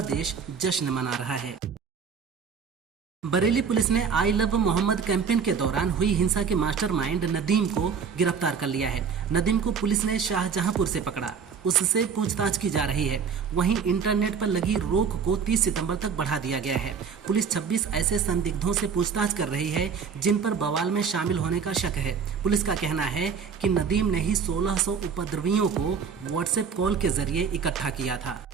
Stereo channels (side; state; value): left; quieter; 6.3 dB